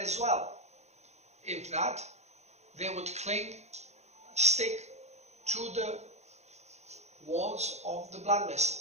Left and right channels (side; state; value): left; late; 0.32 ms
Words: well. If not, they would stick to the walls of the blood